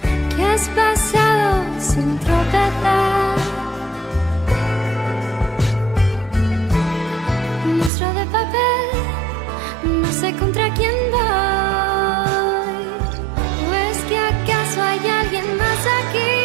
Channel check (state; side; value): drops out; left; at 7.9 s